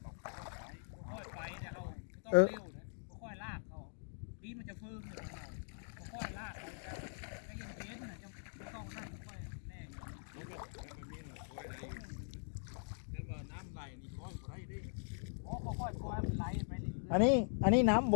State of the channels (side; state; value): right; silent; digital silence